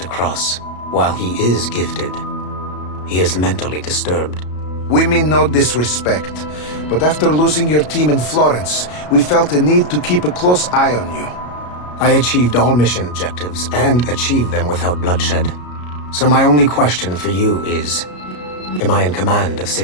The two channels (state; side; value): late; right; 33 ms